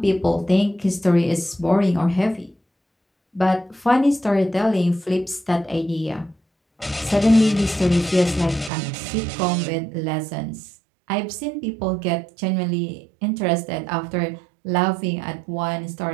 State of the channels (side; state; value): left; drops out; at 8.7 s